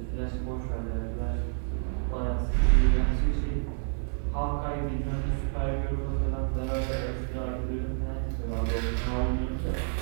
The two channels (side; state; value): left; silent; 58 dB below the other